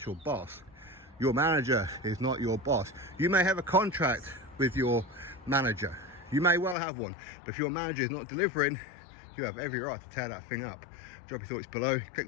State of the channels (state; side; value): drops out; right; at 6.8 s